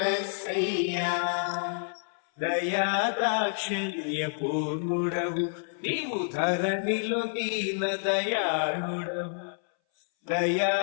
దయాదాక్షిణ్య పూర్ణుడవు నీవు ధరణిలో దీన దయాళుడవు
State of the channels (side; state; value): right; silent; 59 dB below the other